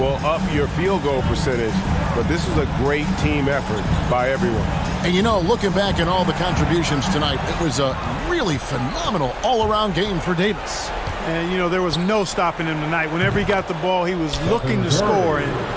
up your field goal percentage, but this was a great team effort by everyone. And you know, looking back at all the contributions tonight, it was a really phenomenal all-around game for Davis. And, you know, there was no stopping him tonight. Whenever he got the ball, he was looking to score, and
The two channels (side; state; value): both; identical; correlation 1.00